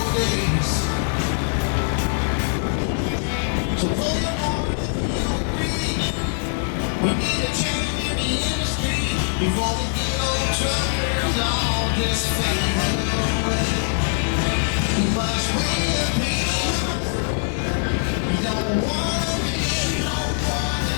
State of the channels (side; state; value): right; silent; 64 dB below the other